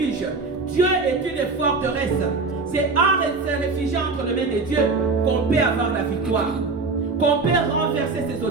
Dieu est une forteresse. C'est en se réfugiant entre les mains de Dieu qu'on peut avoir la victoire, qu'on peut renverser ses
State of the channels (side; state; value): left; quieter; 4.0 dB